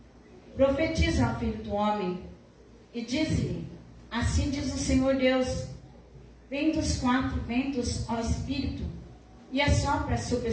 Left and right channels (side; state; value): both; identical; correlation 1.00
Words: profetiza ao Filho do homem, e disse-lhe: assim diz o Senhor Deus: vem dos quatro ventos ao Espírito, e assopra sobre